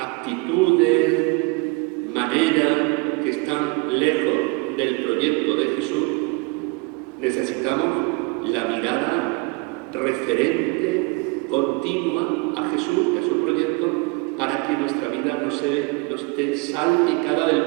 maneras que están lejos del proyecto de Jesús, necesitamos la mirada referente, continua a Jesús, a su proyecto, para que nuestra vida no esté salpicada del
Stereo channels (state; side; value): quieter; left; 28.0 dB